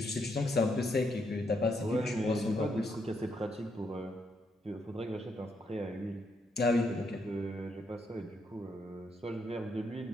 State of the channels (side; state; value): both; normal; correlation 0.77